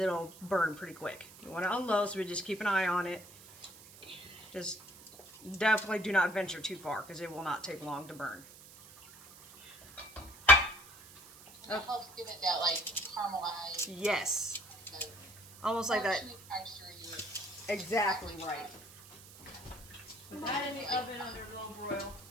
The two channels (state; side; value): noise; right; hiss, 20 dB below the sound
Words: burn pretty quick. We want it on low, so we just keep an eye on it. Just definitely do not venture too far because it will not take long to burn. It helps give it that like caramelized. Yes. Almost like that. Exactly right. Put that in the oven under low broil.